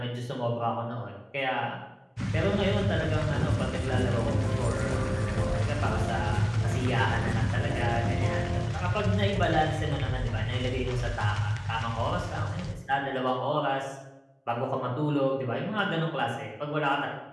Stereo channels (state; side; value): identical; both; correlation 1.00